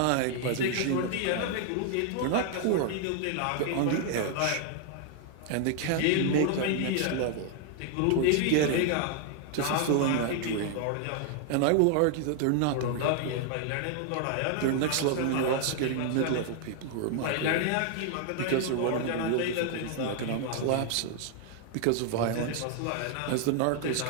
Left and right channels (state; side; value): different; both; correlation 0.00